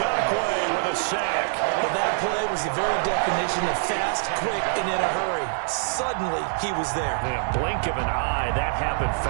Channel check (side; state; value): left; silent; digital silence